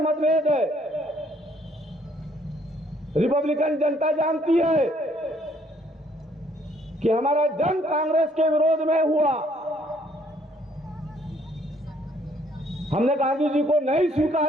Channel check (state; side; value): normal; both; correlation 0.65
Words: मतभेद है, रिपब्लिकन जनता जानती है कि हमारा जंग कांग्रेस के विरोध में हुआ। हमने गांधी जी को नहीं